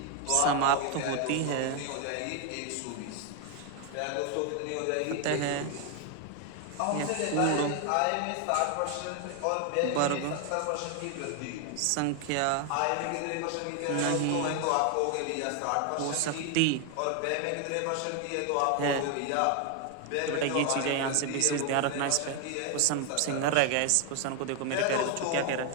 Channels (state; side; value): different; both; correlation 0.01